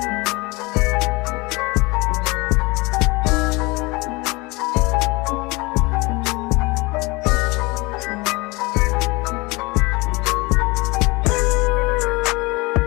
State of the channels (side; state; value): right; quieter; 24.8 dB